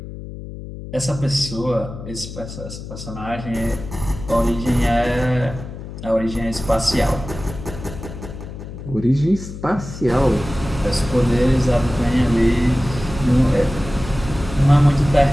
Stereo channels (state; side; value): noise; left; hum, 11 dB below the sound